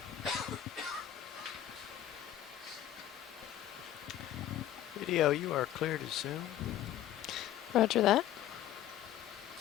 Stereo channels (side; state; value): right; quieter; 12.0 dB